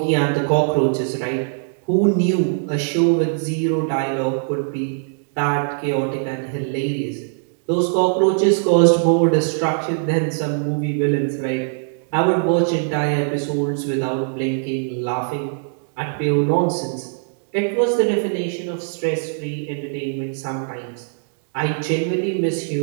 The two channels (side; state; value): left; silent; digital silence